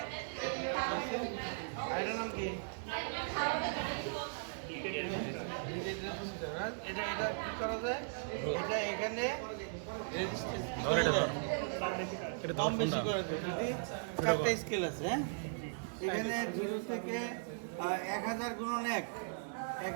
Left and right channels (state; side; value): silent; left; digital silence